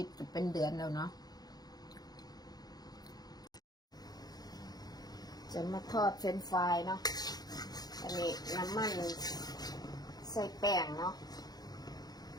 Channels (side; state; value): right; late; 0.19 ms